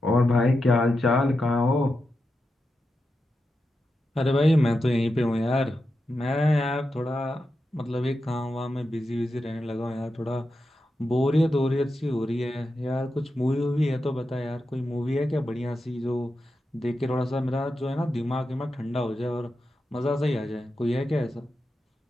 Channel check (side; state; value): both; normal; correlation 0.88